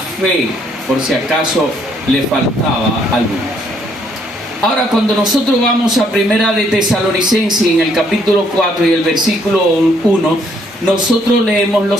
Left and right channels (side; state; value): both; normal; correlation 0.68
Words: por si acaso le faltaba a algunos. Ahora, cuando nosotros vamos a Primera de Tesalonicenses, en el capítulo 4 y el versículo 1, nosotros leemos lo